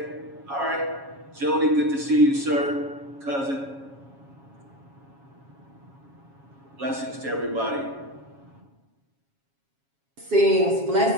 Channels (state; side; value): late; left; 7.3 ms